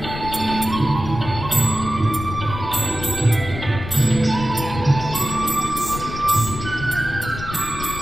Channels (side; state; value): left; noise; rumble, 9 dB below the sound